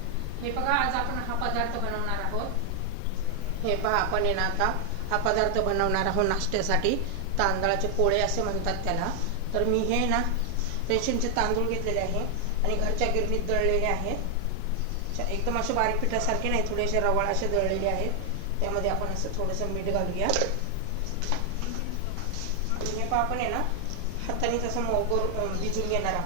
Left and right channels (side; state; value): both; different; correlation 0.00